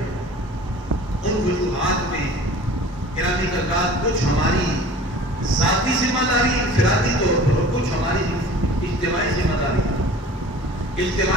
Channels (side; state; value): both; normal; correlation 0.44